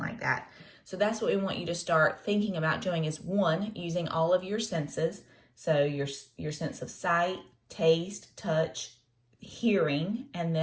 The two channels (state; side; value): identical; both; correlation 1.00